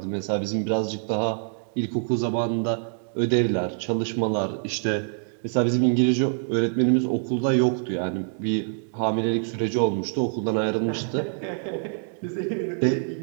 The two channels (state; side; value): silent; left; digital silence